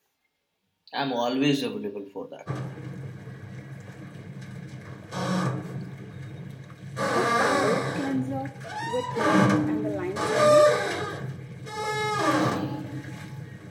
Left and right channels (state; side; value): identical; both; correlation 1.00